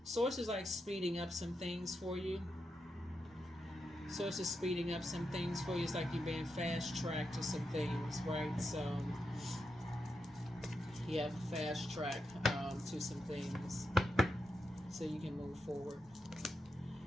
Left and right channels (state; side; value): normal; both; correlation 0.85